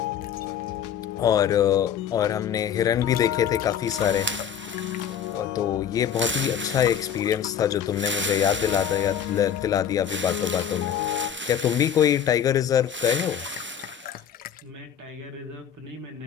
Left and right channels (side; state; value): right; quieter; 8.8 dB